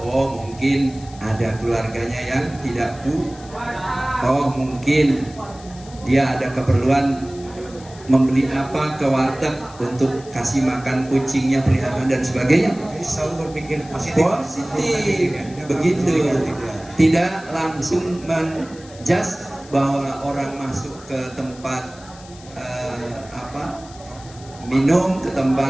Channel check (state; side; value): noise; left; hiss, 21 dB below the sound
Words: Oh mungkin ada keluarganya yang tidak oh mungkin dia ada keperluan membeli apa ke warteg untuk kasih makan kucingnya, peliharaan dan sebagainya. Jadi selalu berpikir positif. Begitu. Tidak langsung menjudge bahwa orang masuk ke tempat minum, ke